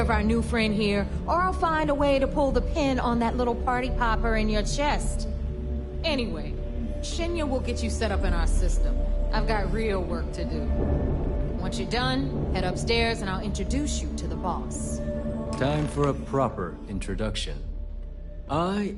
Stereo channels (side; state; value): both; identical; correlation 1.00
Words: our new friend here, or I'll find a way to pull the pin on that little party popper in your chest. Anyway, Shinya will get you set up in our system. I've got real work to do. Once you're done, head upstairs and I'll introduce you to the boss. Time for a proper introduction. I